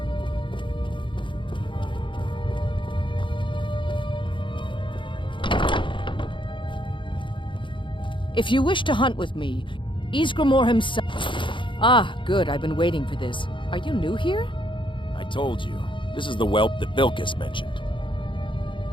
If you wish to hunt with me, Ysgramor himself... Ah, good. I've been waiting for this. Are you new here? I told you. This is the whelp that Vilkas mentioned.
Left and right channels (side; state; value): right; late; 0.24 ms